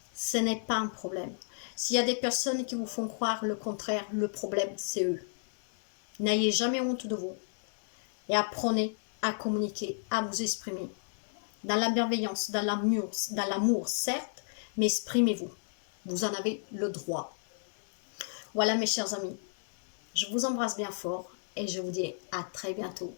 ce n'est pas un problème. S'il y a des personnes qui vous font croire le contraire, le problème, c'est eux. N'ayez jamais honte de vous. Et apprenez à communiquer, à vous exprimer. Dans la bienveillance, dans l'amour, certes, mais exprimez-vous. Vous en avez le droit. Voilà mes chers amis, je vous embrasse bien fort et je vous dis à très bientôt.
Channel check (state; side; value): silent; right; digital silence